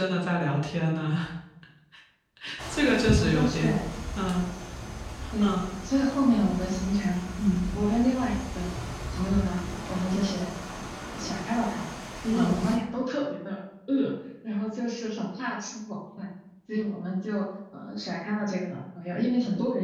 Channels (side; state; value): both; identical; correlation 1.00